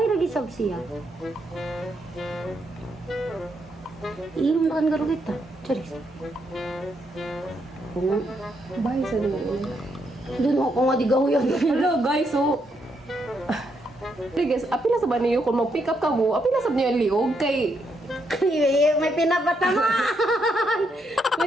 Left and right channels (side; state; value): both; normal; correlation 0.78